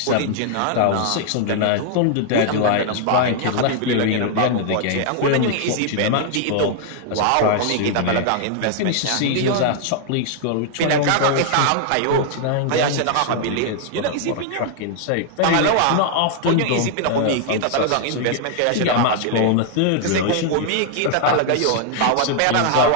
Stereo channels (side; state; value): both; different; correlation -0.01